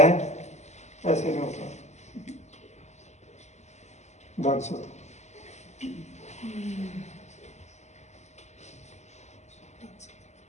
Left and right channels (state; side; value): late; right; 0.33 ms